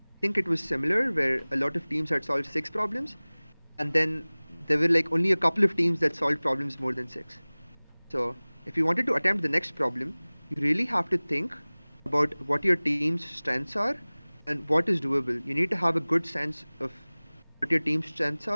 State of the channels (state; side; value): inverted; both; correlation -1.00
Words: think it was similar where a lot of teams had solved 6 problems, and then there were like only a couple of teams that solved problems more than 6. So if you wanted to attempt the next problem, you really have to think about what your team's strengths are and what is doable. You need to have a good sense of what your team's strengths